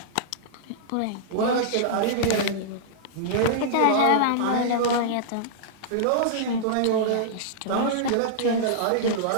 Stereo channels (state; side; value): different; both; correlation -0.02